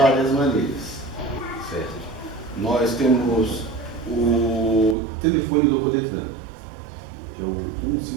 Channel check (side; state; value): left; drops out; at 5.0 s